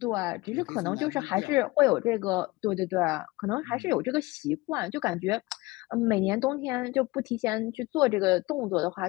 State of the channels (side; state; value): right; quieter; 21.9 dB